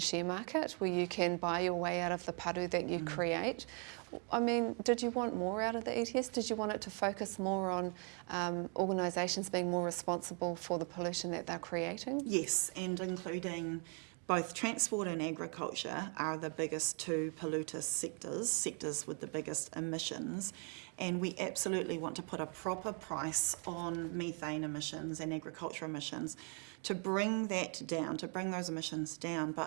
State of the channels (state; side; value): quieter; left; 36.6 dB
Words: market where you can buy your way out of the paru that you create. I mean, did you want more out of the ETS? Did you want it to focus more on organisations being more responsible for the pollution that they're creating? Yes, and including both transport and agriculture are the biggest 2 polluter sectors with the biggest emissions, and we absolutely want to put a proper price on methane emissions and agriculture emissions to bring that down, to bring those emissions down,